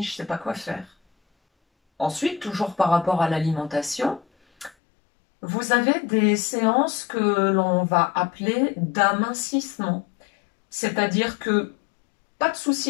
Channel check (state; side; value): drops out; right; at 4.7 s